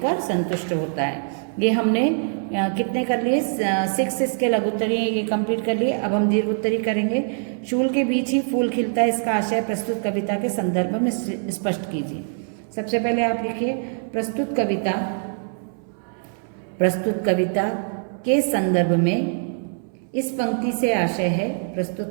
संतुष्ट होता है। ये हमने कितने कर लिए? 6 इसके लघुत्तरी ये कंप्लीट कर लिए। अब हम दीर्घ उत्तरी करेंगे। चूल के बीच ही फूल खिलता है, इसका आशय प्रस्तुत कविता के संदर्भ में स्पष्ट कीजिए। सबसे पहले आप लिखिए प्रस्तुत कविता के संदर्भ में इस पंक्ति से आशय है।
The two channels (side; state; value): left; silent; 61 dB below the other